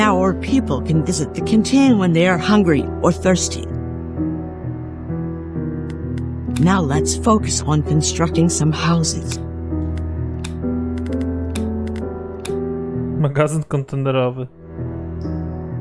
our people can visit the canteen when they are hungry or thirsty. Now let's focus on constructing some houses. Magazyn kontenerowy.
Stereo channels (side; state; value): both; identical; correlation 1.00